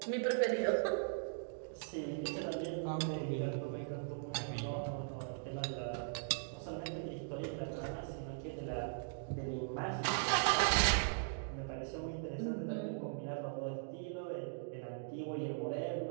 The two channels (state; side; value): silent; left; digital silence